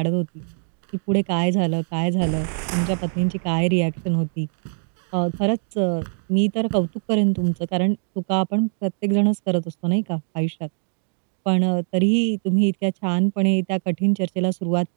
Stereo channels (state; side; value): silent; left; 64 dB below the other